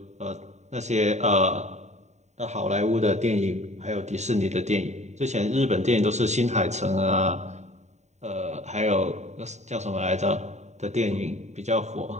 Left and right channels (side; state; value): left; late; 0.33 ms